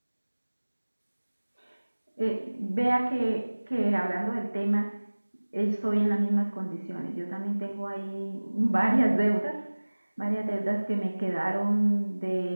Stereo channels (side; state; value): both; inverted; correlation -1.00